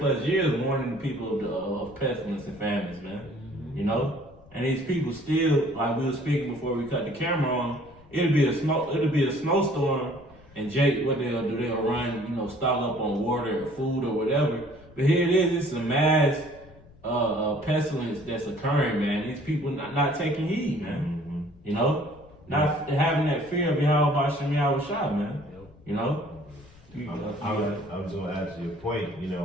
years, warning the people of pestilence and famines, man. You know, and these people still, like we were speaking before we cut the camera on, it'll be a snowstorm, and Jake, what they'll do, they'll run, you know, stock up on water or food or whatever. But here it is, it's a mass pestilence that's occurring, man. These people not taking heed, man. You know, not having that fear of Yahweh Bashem Yahweh Shah, man. You know, I was going to add to your point. You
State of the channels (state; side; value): noise; left; rumble, 24 dB below the sound